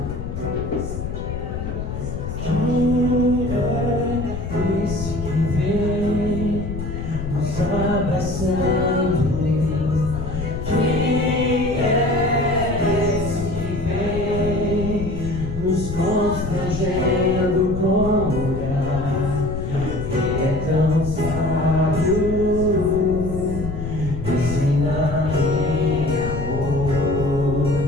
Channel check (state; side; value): noise; left; rumble, 6 dB below the sound